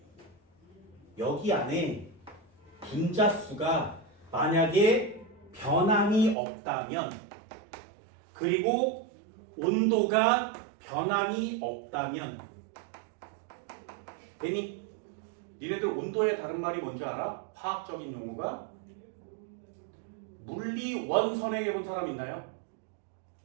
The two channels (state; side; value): drops out; left; at 6.4 s